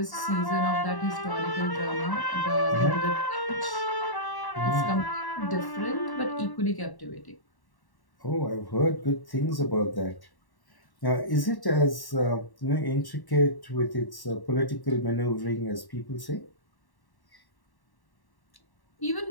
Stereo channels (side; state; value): right; late; 1.1 ms